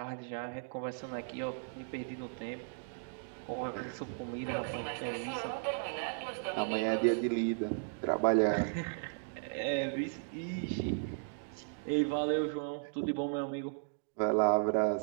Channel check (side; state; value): left; silent; digital silence